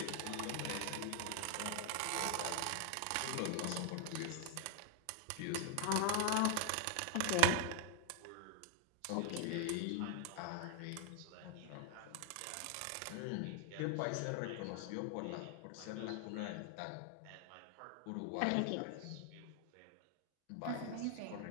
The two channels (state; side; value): different; both; correlation 0.00